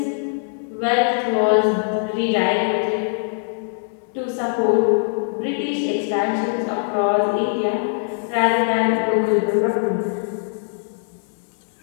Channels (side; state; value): right; silent; digital silence